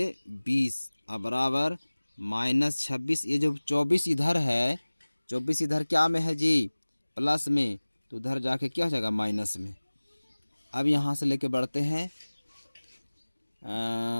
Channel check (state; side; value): inverted; both; correlation -1.00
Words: और बराबर -26। ये जो 24 इधर है, 24 इधर क्या में है जी, प्लस में, तो उधर जाके क्या हो जाएगा माइनस में। अब यहाँ से लेके बढ़ते हैं,